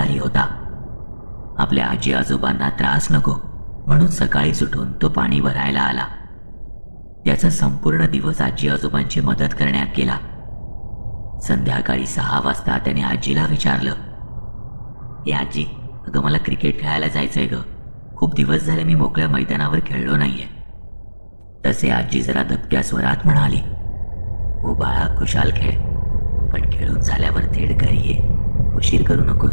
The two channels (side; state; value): both; inverted; correlation -1.00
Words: होता. आपल्या आजी आजोबांना त्रास नको म्हणून सकाळीच उठून तो पाणी भरायला आला. त्याचा संपूर्ण दिवस आजी आजोबांची मदत करण्यात गेला. संध्याकाळी 6 वाजता त्याने आजीला विचारलं, ए आजी, अगं मला क्रिकेट खेळायला जायचंय ग. खूप दिवस झाले मी मोकळ्या मैदानावर खेळलो नाहीये. तसे आजी जरा दबक्या स्वरात म्हणाली, हो बाळा, खुशाल खेळ, पण खेळून झाल्यावर थेट घरी ये, उशीर करू